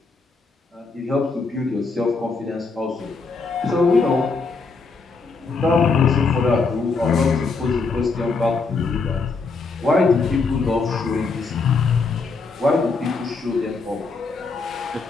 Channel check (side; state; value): right; quieter; 4.2 dB